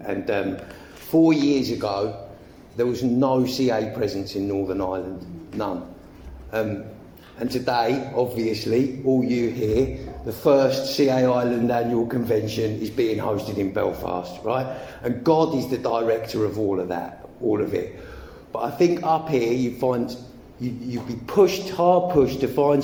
And 4 years ago, there was no CA presence in Northern Ireland, none. And today, obviously, all you here, the first CA Ireland annual convention is being hosted in Belfast, right? And God is the director of all of that, all of it. But I think up here you'd be hard pushed to find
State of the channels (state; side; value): identical; both; correlation 1.00